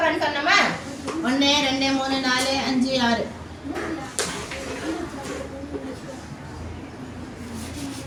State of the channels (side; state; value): both; identical; correlation 1.00